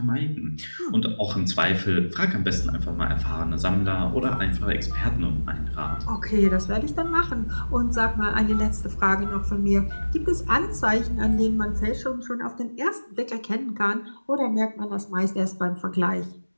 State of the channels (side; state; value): both; inverted; correlation -1.00